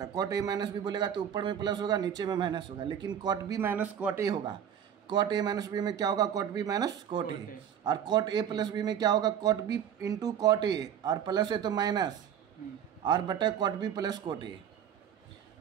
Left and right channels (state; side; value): quieter; left; 9.0 dB